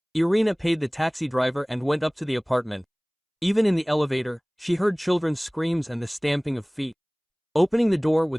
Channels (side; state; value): both; identical; correlation 1.00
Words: Irina paid the taxi driver and went up to the apartment. Even in the elevator, she heard children's screams and the stamping of feet. Opening the door